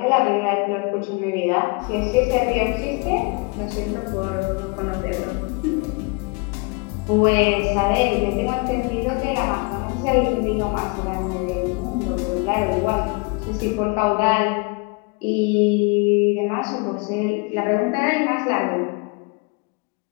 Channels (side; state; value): right; quieter; 30.5 dB